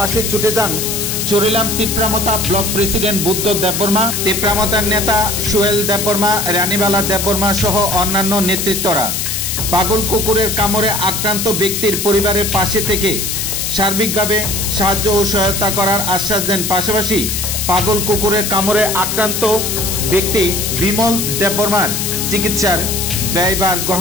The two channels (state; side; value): noise; left; hiss, 2 dB below the sound